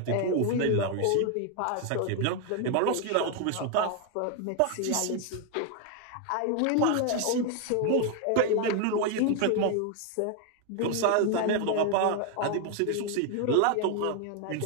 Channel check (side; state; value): both; different; correlation 0.01